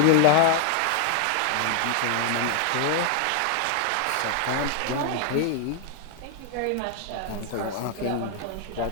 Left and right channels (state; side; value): different; both; correlation 0.00